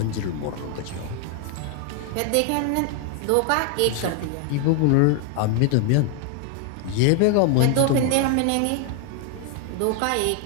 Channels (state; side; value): different; both; correlation 0.00